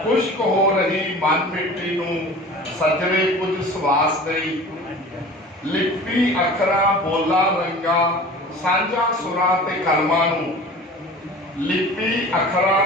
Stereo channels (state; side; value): normal; both; correlation 0.40